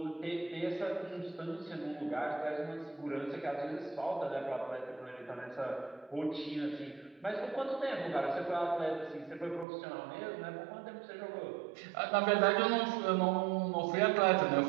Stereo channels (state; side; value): drops out; left; at 9.7 s